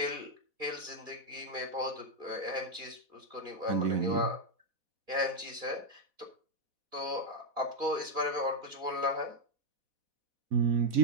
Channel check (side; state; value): left; late; 4.1 ms